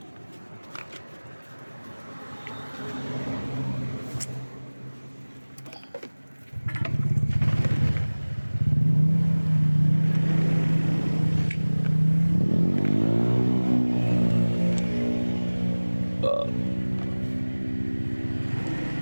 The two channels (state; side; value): inverted; both; correlation -1.00